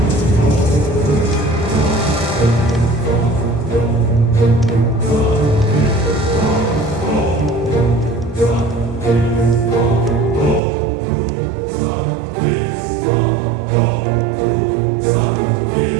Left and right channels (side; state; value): left; drops out; at 10.6 s